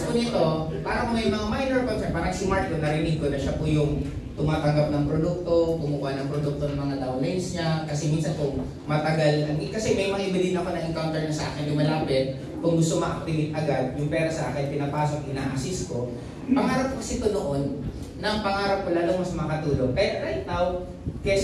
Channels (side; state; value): both; identical; correlation 1.00